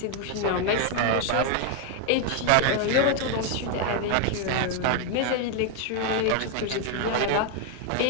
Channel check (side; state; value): both; different; correlation 0.01